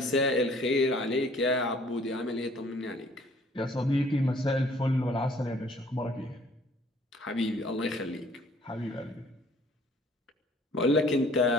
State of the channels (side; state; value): both; normal; correlation 0.57